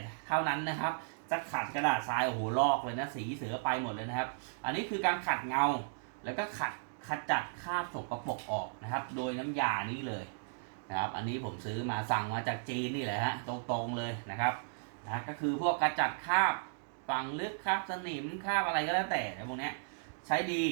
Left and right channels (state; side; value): silent; left; digital silence